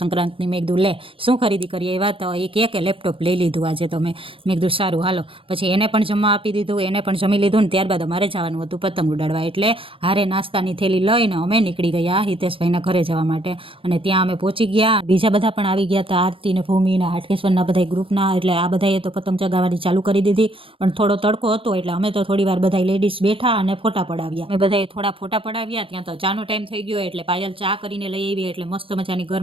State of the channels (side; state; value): left; late; 0.26 ms